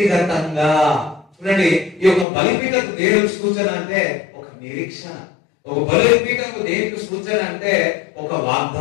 చూడండి. ఈ యొక్క బలిపీఠకు దేవునికి సూచన అంటే ఒక నిరీక్షణ. ఒక బలిపీఠకు దేనికి సూచన అంటే ఒక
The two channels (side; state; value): right; drops out; at 2.2 s